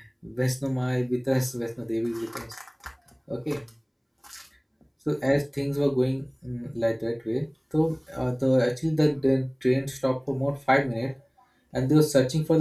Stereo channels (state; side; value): identical; both; correlation 1.00